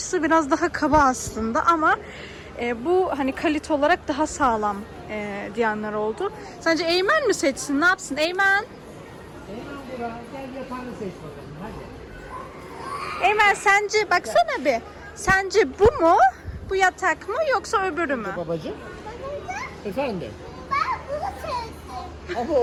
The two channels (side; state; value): both; identical; correlation 1.00